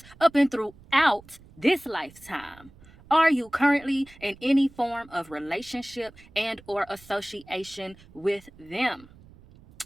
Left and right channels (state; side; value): noise; right; rumble, 24 dB below the sound